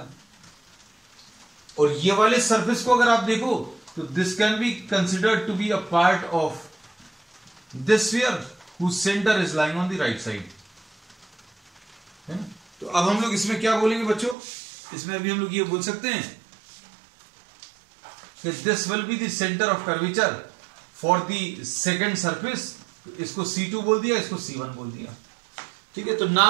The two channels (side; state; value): left; drops out; at 14.4 s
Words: और ये वाले सरफेस को अगर आप देखो तो this can be considered to be a part of this sphere whose centre is lying on the right side. तो अब हम लोग इसमें क्या बोलेंगे बच्चों, इसमें अभी हम लोग ये बोल सकते हैं कि this will be the centre of curvature for the second surface. इसको C2 बोल दिया, इसको C1 बोल दिया, ठीक है। तो